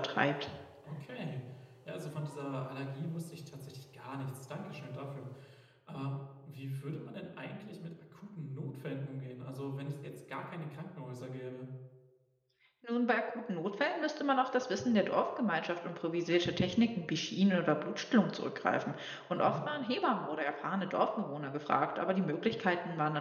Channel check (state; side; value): identical; both; correlation 1.00